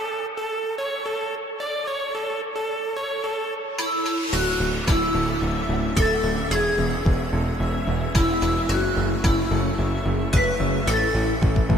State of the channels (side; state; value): both; normal; correlation 0.69